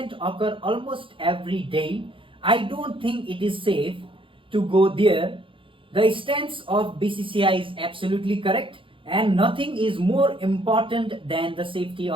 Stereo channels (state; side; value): late; left; 0.25 ms